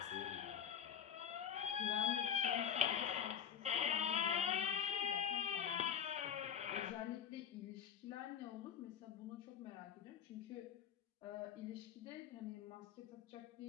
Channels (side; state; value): right; quieter; 8.4 dB